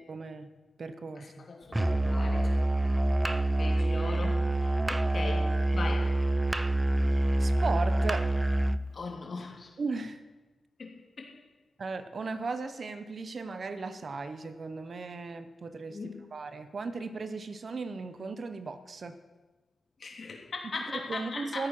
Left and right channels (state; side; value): normal; both; correlation 0.97